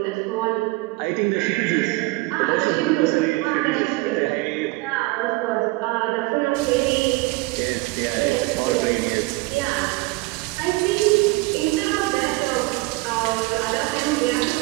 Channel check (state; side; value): quieter; left; 22.5 dB